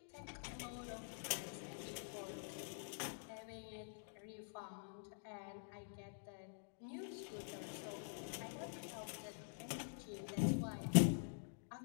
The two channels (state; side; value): silent; right; digital silence